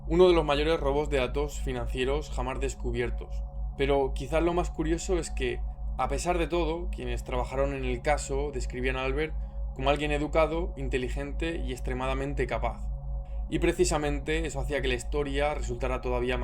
Uno de los mayores robos de datos financieros jamás descubiertos. Pero quizás lo más curioso es que, a pesar de todo, quienes trabajaron en el caso describían a Albert como alguien educado, inteligente y extremadamente capaz. Y precisamente eso hacía que la historia resultara todavía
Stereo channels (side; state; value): both; identical; correlation 1.00